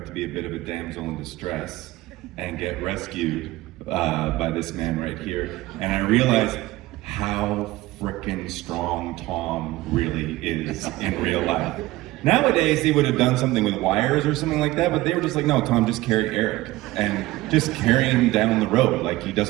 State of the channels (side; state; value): left; quieter; 18.2 dB